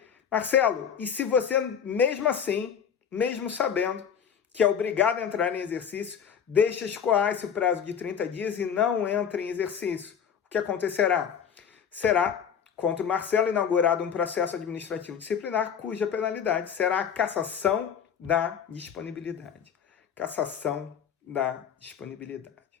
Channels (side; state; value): right; quieter; 7.7 dB